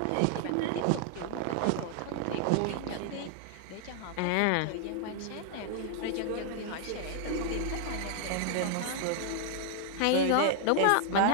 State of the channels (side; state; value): both; different; correlation 0.00